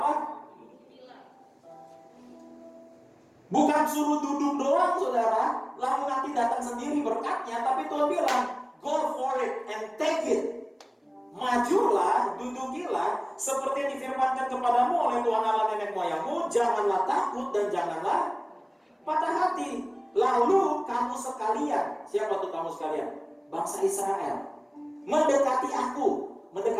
apa? Bukan suruh duduk doang saudara, lalu nanti datang sendiri berkatnya, tapi Tuhan bilang, go for it and take it. Majulah, dudukilah, seperti yang difirmankan kepadamu oleh Tuhan Allah nenek moyangmu, janganlah takut dan janganlah patah hati. Lalu kamu sekalian, siapa tuh kamu sekalian? Bangsa Israel, mendekati aku,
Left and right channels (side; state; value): both; identical; correlation 1.00